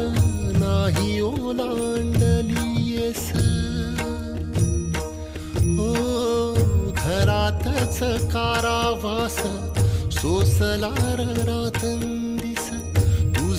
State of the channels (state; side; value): identical; both; correlation 1.00